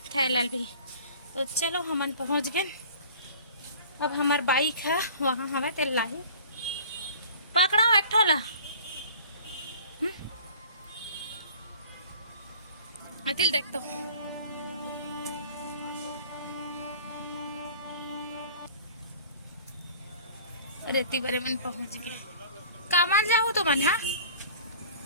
थैलाल भी। तो चलो हमन पहुंच गए। अब हमार बाइक है वहाँ हमें तेल लाही पकड़ा एक ठोला अतिल देख तो रेती बरे मन पहुंच गए। कामान जाओ तो मन हाँ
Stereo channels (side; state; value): both; inverted; correlation -0.46